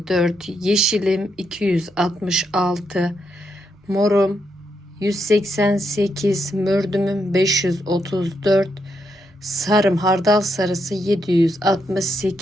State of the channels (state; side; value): normal; both; correlation 0.80